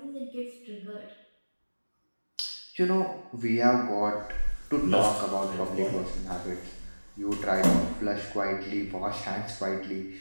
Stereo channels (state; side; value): inverted; both; correlation -1.00